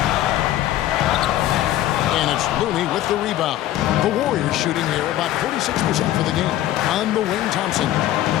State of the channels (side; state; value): right; quieter; 13.6 dB